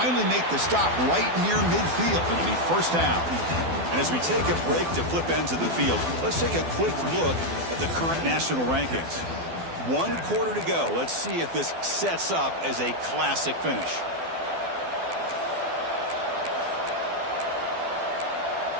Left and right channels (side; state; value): left; late; 12 ms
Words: make the stop right near midfield. It'll be first down. And as we take a break to flip ends of the field, let's take a quick look at the current national rankings. 1 quarter to go. Let's see if this sets up as a classic finish.